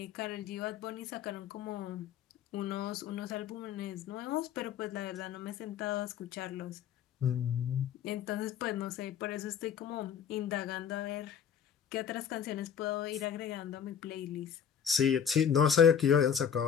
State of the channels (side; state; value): right; quieter; 8.1 dB